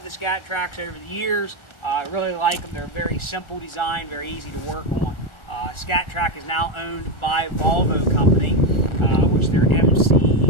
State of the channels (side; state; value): right; late; 1.4 ms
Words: the Scat Traks over the years. I really like them. They're a very simple design, very easy to work on. Scat Trak is now owned by Volvo company, which their